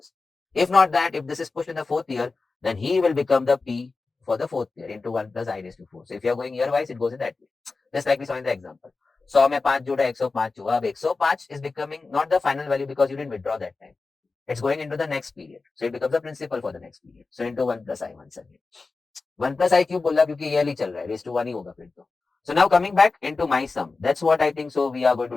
If not that, if this is pushed in the fourth year, then he will become the P for the fourth year into 1 plus I raised to 4. So if you're going year wise, it goes in that way. Just like we saw in the example. 100 में 5 जोड़ा 105 हुआ. अब 105 is becoming not the final value because you didn't withdraw that time. It's going into the next period. So it becomes the principal for the next period. So into 1 plus I once again. 1 plus I क्यों बोला क्योंकि yearly चल रहा है. Raised to 1 ही होगा फिर तो. So now coming back into my sum. That's what I think so we are going to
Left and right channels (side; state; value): right; quieter; 4.0 dB